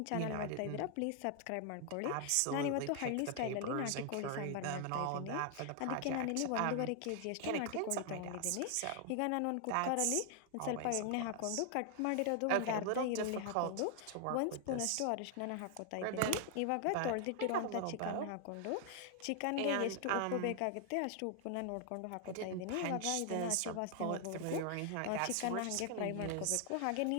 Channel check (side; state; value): both; different; correlation 0.00